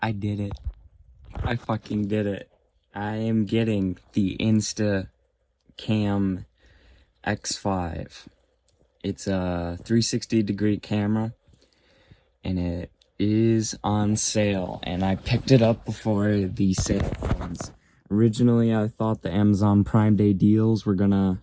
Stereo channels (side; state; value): both; identical; correlation 1.00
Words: I did it. I fucking did it. I am getting the Instacam X5. It's a 360-degree camera, and it is on sale, and I picked it up before the sale ends. Originally, I thought the Amazon Prime Day deals were gonna